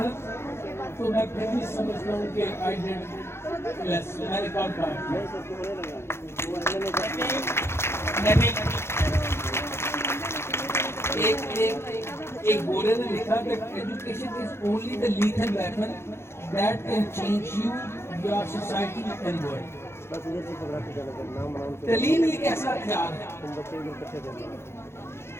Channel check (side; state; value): right; late; 0.12 ms